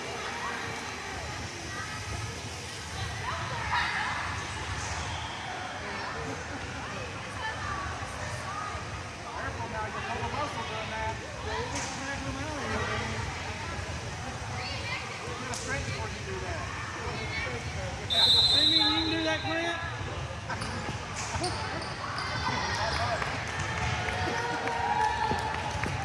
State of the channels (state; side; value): identical; both; correlation 1.00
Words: Hey, you can do that, Clint?